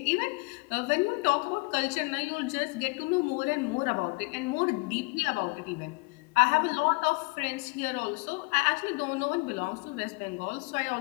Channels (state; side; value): quieter; right; 28.1 dB